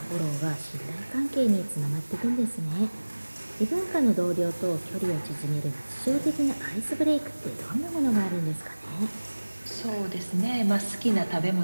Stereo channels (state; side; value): inverted; both; correlation -1.00